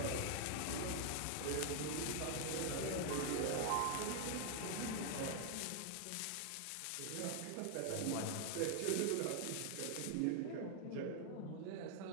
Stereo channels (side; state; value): both; different; correlation 0.00